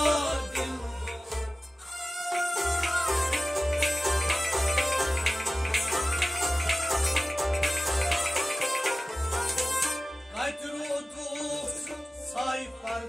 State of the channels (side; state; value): both; normal; correlation 0.96